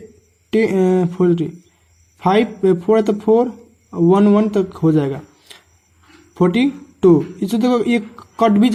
5 4 तो 4 1 1 तक हो जाएगा 42। इससे देखो ये कट भी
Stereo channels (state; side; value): identical; both; correlation 1.00